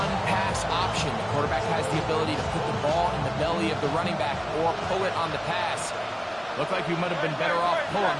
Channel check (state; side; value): identical; both; correlation 1.00